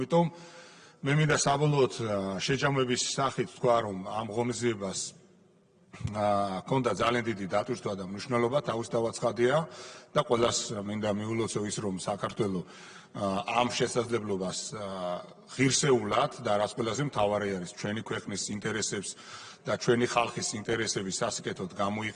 მე მინდა საბოლოოდ შეჯამების სახით თქვა, რომ ამ ღონისძიებას ქონდა ძალიან დიდი დატვირთვა და მნიშვნელობა, თავისთავად ცხადია და ყველას მინდა მიულოცო ის, რომ საქართველო ამ შესაძლებლობას ღირსეულად და რაც ყველაზე მთავარი არის ჩვენი ქვეყნის ინტერესებს და ჩვენი ხალხის ინტერესების სასიკეთოდ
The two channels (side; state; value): both; identical; correlation 1.00